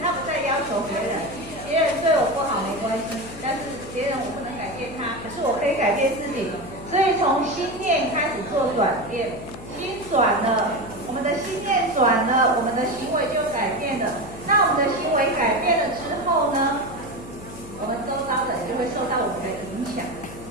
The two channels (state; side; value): noise; left; hum, 15 dB below the sound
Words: 他不再要求别人，别人对我不好没关系，但是别人我不能改变他，可是我可以改变自己。所以从心念开始做转变，心转了，我们的心念转了，我们的行为就改变了。那我们的行为改变了之后呢，我们周遭的人就会受到我们的影响。